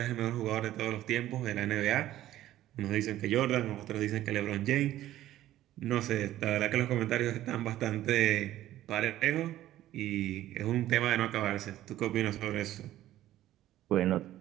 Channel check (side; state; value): left; quieter; 13.8 dB